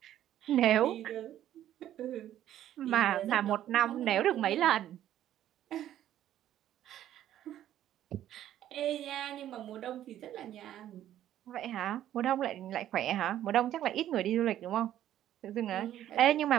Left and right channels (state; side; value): quieter; left; 12.0 dB